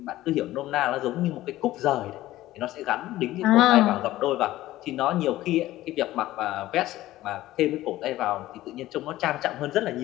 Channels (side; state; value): right; quieter; 15.7 dB